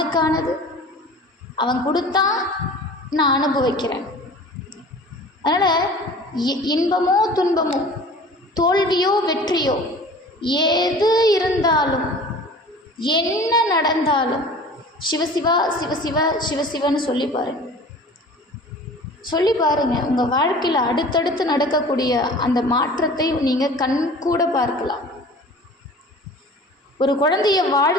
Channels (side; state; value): both; normal; correlation 0.43